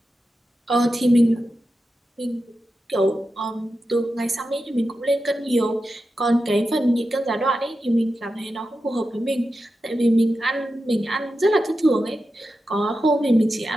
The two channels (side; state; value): both; normal; correlation 0.90